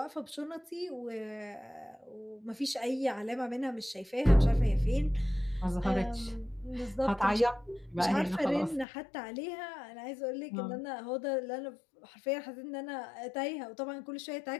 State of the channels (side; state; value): right; drops out; at 8.8 s